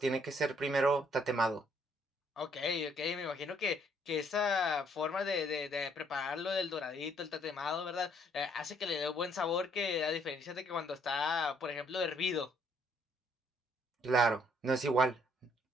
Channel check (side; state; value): both; normal; correlation 0.67